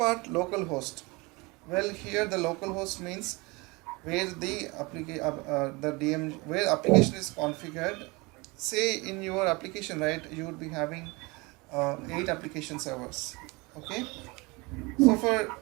localhost. Well, here the localhost means where the DM where application is configured. Say in your application, right, you would be having 8 application servers. Okay. So for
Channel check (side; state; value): left; quieter; 25.7 dB